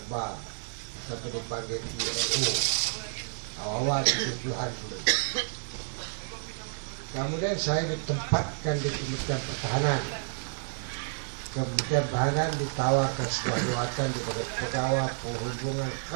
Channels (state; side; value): silent; left; 58 dB below the other